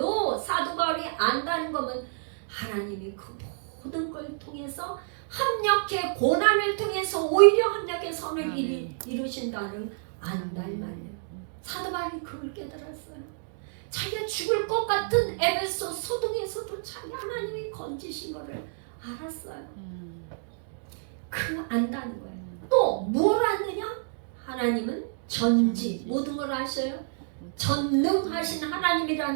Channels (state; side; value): silent; left; digital silence